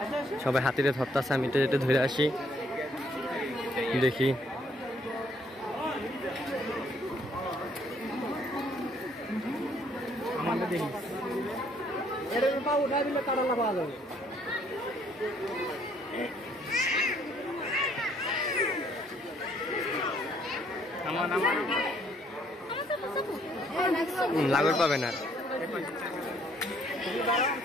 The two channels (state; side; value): normal; both; correlation 0.65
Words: সবাই হাতিরে ধরতেছে আমি তো যেটা ধরে আসি দেখি লাগর পাবে না